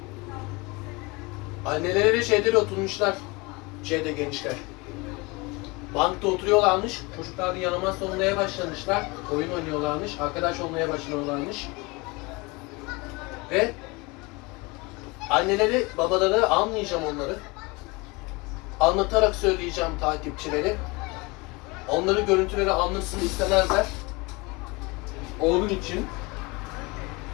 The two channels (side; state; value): right; quieter; 25.7 dB